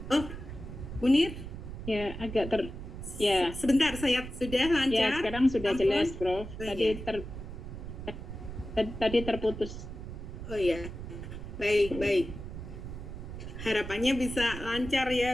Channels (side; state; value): right; noise; rumble, 9 dB below the sound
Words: Munir? Ya, agak ya. Sebentar, saya sudah lancar. Ya, sekarang sudah jelas, Prof. Tadi terputus. Oh ya, baik. Harapannya bisa lancar